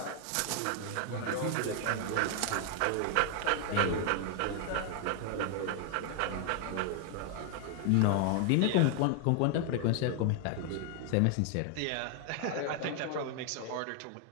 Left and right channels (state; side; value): different; both; correlation 0.00